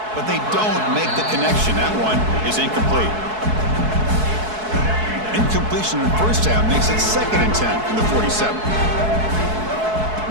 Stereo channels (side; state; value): left; late; 4.7 ms